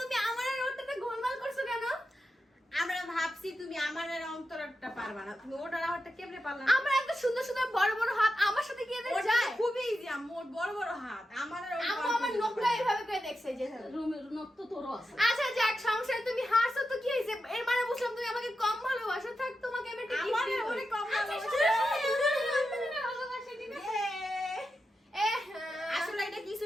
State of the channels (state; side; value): normal; both; correlation 0.89